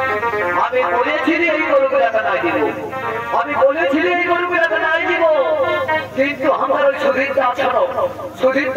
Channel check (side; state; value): both; identical; correlation 1.00